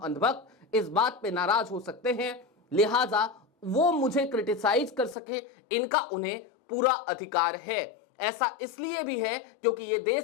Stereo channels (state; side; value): drops out; right; at 5.2 s